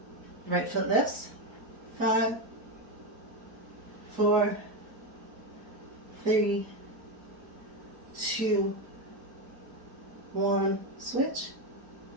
Right foot lifts. 5, 4, 3, 2, 1. Switch.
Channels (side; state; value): left; late; 4.1 ms